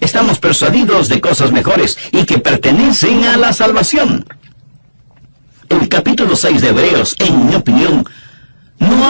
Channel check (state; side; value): inverted; both; correlation -1.00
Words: estamos persuadidos de cosas mejores y que pertenecen a la salvación. El capítulo 6 de Hebreos, en mi opinión, no